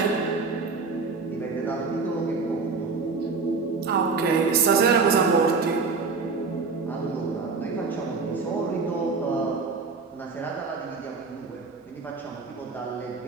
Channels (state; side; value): quieter; left; 4.5 dB